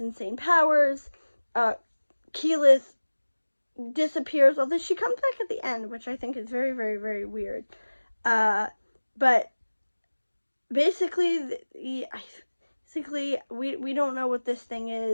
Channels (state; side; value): inverted; both; correlation -1.00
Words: powers. Keyleth disappears, although she comes back at the end, which I think is very, very, very weird. But basically, we don't know what this thing